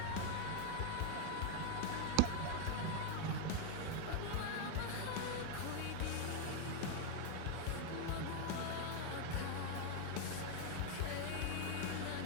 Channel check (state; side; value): different; both; correlation 0.00